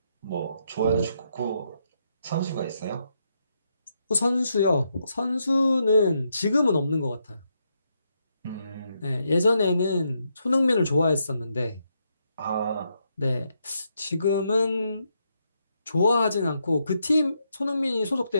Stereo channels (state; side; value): inverted; both; correlation -0.79